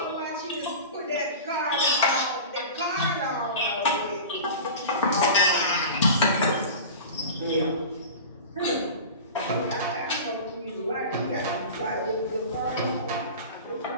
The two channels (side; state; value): both; inverted; correlation -0.33